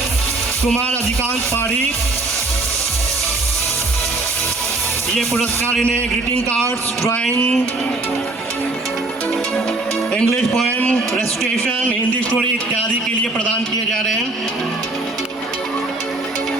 कुमार अधिकांत पारी. ये पुरस्कार इन्हें greeting cards, drawing, English poem, recitation, Hindi story इत्यादि के लिए प्रदान किए जा रहे हैं.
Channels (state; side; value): quieter; left; 3.1 dB